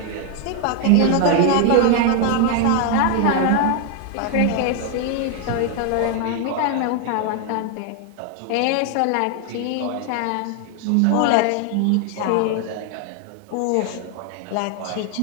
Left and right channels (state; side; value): different; both; correlation 0.01